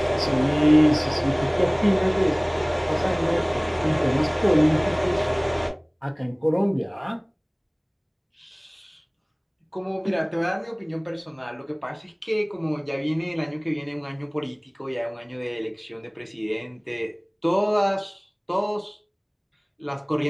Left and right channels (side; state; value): both; identical; correlation 1.00